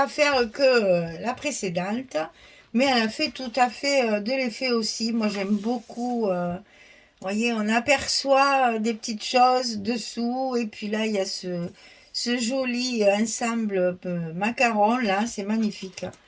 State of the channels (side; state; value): both; identical; correlation 1.00